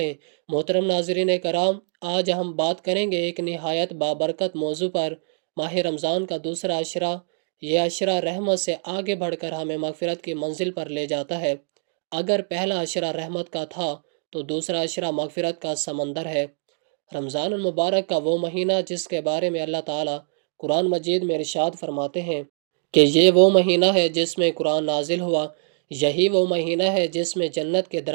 محترم ناظرین کرام، آج ہم بات کریں گے ایک نہایت بابرکت موضوع پر، ماہ رمضان کا دوسرا عشرہ۔ یہ عشرہ رحمت سے آگے بڑھ کر ہمیں مغفرت کی منزل پر لے جاتا ہے۔ اگر پہلا عشرہ رحمت کا تھا تو دوسرا عشرہ مغفرت کا سمندر ہے۔ رمضان المبارک کا وہ مہینہ جس کے بارے میں اللہ تعالیٰ قرآن مجید میں ارشاد فرماتے ہیں کہ یہ وہ مہینہ ہے جس میں قرآن نازل ہوا، یہی وہ مہینہ ہے جس میں جنت کے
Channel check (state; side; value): silent; left; digital silence